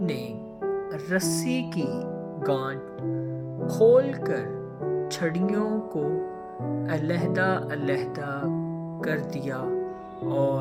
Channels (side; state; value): both; identical; correlation 1.00